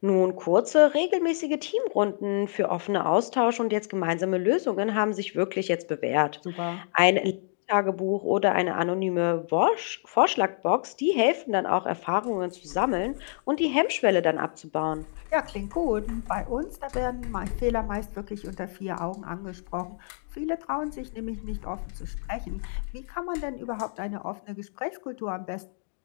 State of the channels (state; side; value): silent; right; digital silence